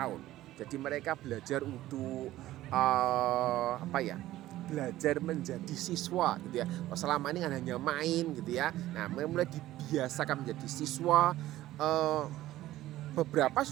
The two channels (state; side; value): quieter; left; 15.2 dB